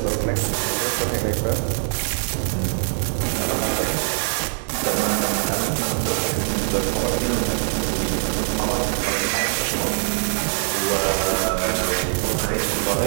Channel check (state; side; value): silent; left; digital silence